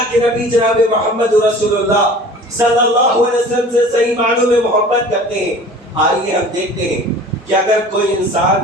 کے نبی جناب محمد رسول اللہ صلی اللہ علیہ وسلم سے صحیح معنوں میں محبت کرتے ہیں۔ آئیے ہم دیکھتے ہیں کہ اگر کوئی انسان،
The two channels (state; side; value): normal; both; correlation 0.44